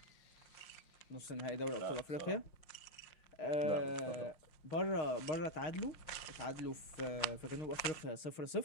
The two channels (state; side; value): late; right; 6.4 ms